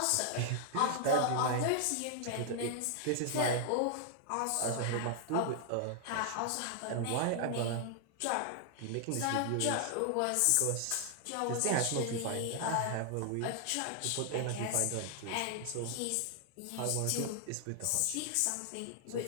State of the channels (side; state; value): both; different; correlation 0.00